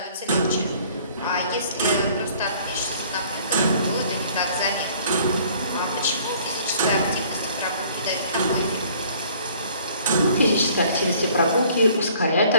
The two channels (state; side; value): inverted; both; correlation -0.56